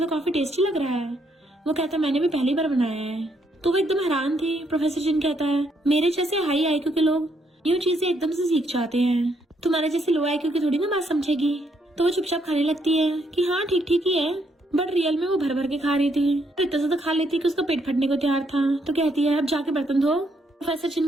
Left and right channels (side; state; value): both; normal; correlation 0.74